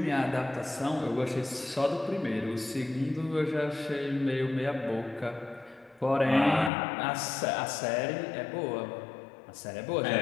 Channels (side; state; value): right; drops out; at 6.7 s